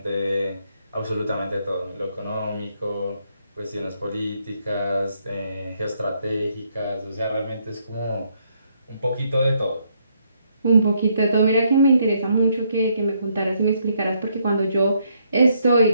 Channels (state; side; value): inverted; both; correlation -0.73